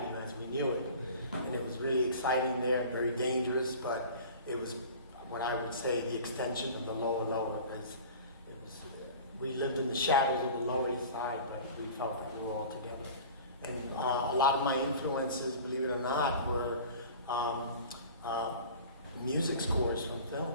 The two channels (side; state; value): both; inverted; correlation -0.40